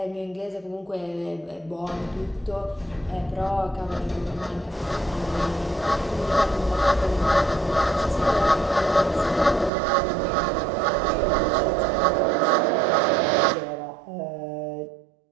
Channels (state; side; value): drops out; left; at 9.7 s